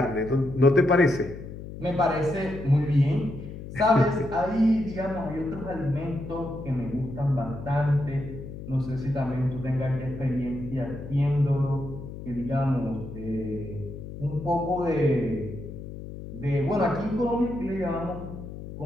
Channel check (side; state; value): left; noise; hum, 11 dB below the sound